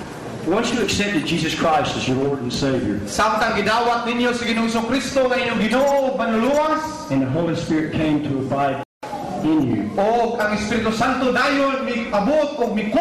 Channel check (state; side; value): identical; both; correlation 1.00